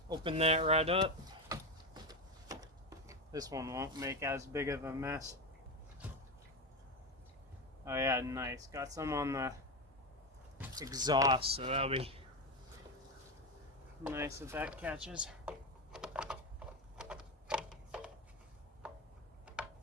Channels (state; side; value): normal; both; correlation 0.16